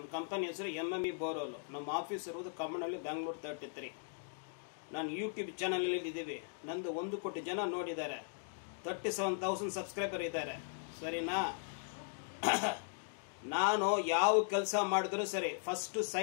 ಕಂಪನಿ ಹೆಸರು MME ಬೋರೋಲು. ನಮ್ಮ ಆಫೀಸ್ ಇರುವುದು ಕಮ್ಮನಹಳ್ಳಿ, ಬೆಂಗಳೂರು 33. ನಾನು ಯೂಟ್ಯೂಬ್ ಚಾನಲಲ್ಲಿ ಇದ್ದೀವಿ. ನಂದು 1 ಕೋಟಿ ಜನ ನೋಡಿದ್ದಾರೆ. 37,000 ಸಬ್ಸ್ಕ್ರೈಬರ್ ಇದ್ದಾರೆ. ಸರಿನಾ? ನಾನು ಯಾವ ಕೆಲಸ ಮಾಡಿದ್ರು ಸರಿ, ಫಸ್ಟ್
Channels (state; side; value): silent; right; digital silence